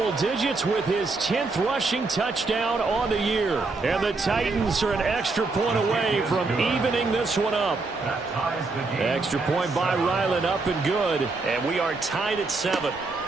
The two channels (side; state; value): left; quieter; 3.7 dB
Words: digits with his 10th rushing touchdown on the year. And the Titans are an extra point away from evening this one up. Extra point by Ryland, up and good. And we are tied at 7.